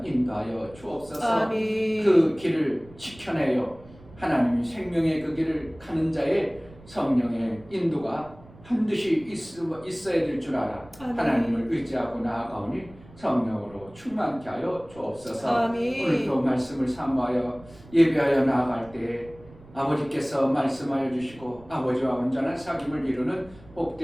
인도하여 주옵소서. 아멘. 그 길을 지켜내요 하나님이 생명의 그 길을 가는 자의 성령의 인도가 반드시 있어야 될 줄 알아. 아멘. 하나님을 의지하고 나아가오니 성령으로 충만케 하여 주옵소서. 아멘. 오늘도 말씀을 사모하여 예배하여 나아갈 때 아버지께서 말씀하여 주시고 아버지와 온전한 사귐을 이루는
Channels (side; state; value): right; noise; rumble, 22 dB below the sound